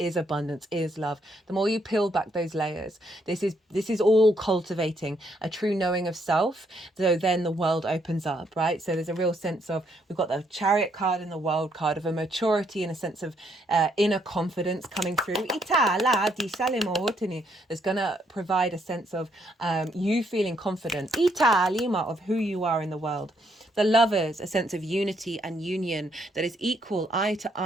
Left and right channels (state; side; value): normal; both; correlation 0.73